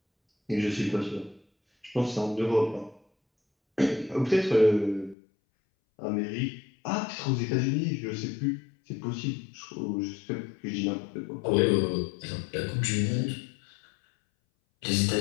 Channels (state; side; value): drops out; right; at 5.2 s